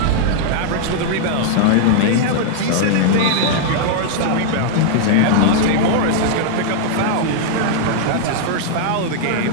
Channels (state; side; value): different; both; correlation -0.01